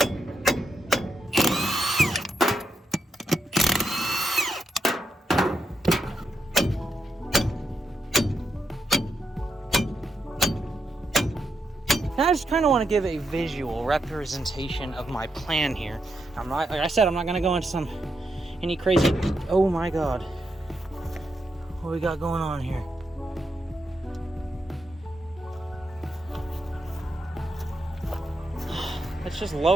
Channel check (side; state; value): both; normal; correlation 0.83